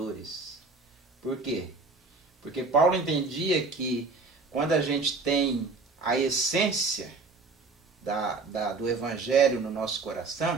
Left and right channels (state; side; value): quieter; left; 4.0 dB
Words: Por quê? Porque Paulo entendia que quando a gente tem a essência do Evangelho no nosso